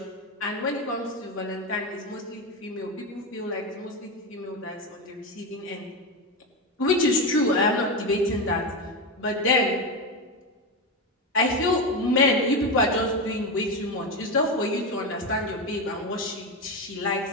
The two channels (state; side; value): normal; both; correlation 0.15